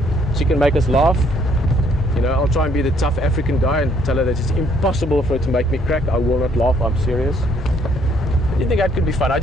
She can make us laugh. You know, I'll try and be the tough African guy and tell her that it's impossible for her to make me crack. I will not laugh. I'm serious. I think that could be fun. I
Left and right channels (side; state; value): both; normal; correlation 0.66